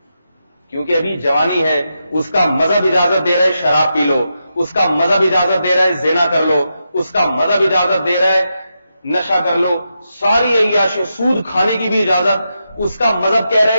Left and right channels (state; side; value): inverted; both; correlation -0.86